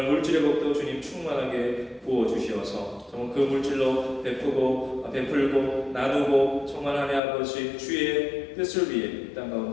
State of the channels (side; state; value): right; drops out; at 7.2 s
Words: 물질의 복도 주님 충만하게 부어 주시어서 정말 그 물질로 베풀고 나누고 정말 하나님 아버지 주의 뜻을 위해 땅